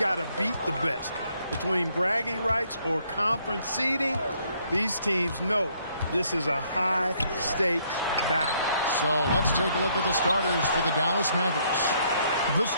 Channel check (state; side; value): inverted; both; correlation -0.68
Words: to beat the best. Between bragging rights or conference seeding, these teams know this is a high-stakes battle. So let's take a look at the starters for the Dallas Mavericks. The